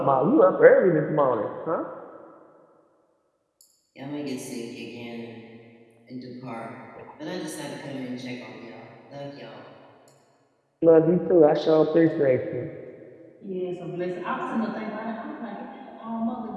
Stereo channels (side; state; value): both; identical; correlation 1.00